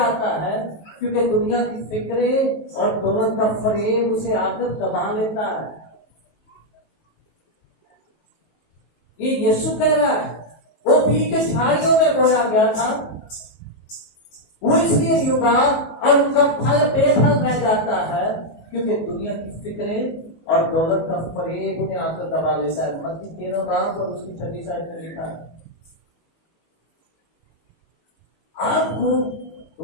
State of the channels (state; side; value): late; right; 19 ms